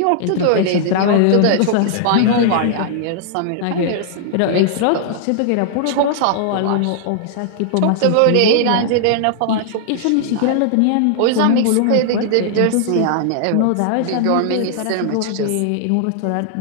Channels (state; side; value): different; both; correlation -0.01